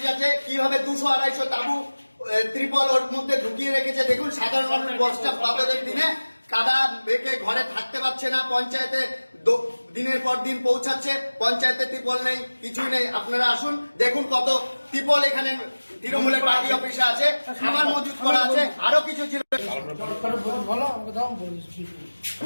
আছে, কিভাবে 200-250 তাবু ত্রিপল ওর মধ্যে ঢুকিয়ে রেখেছে। দেখুন সাধারণ মানুষ বর্ষা প্লাবের দিনে কাদা বেঁকে ঘরে থাকতে পারছে না, পঞ্চায়েতে দিনের পর দিন পৌঁছাচ্ছে, পঞ্চায়েতে ত্রিপল নেই, কিছুই নেই। আপনারা আসুন দেখুন কত ত্রিপল এখানে তৃণমূলের পার্টি অফিসে আছে, খাবার মজুত করা আছে, আরো কিছু ছিল।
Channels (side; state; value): both; inverted; correlation -1.00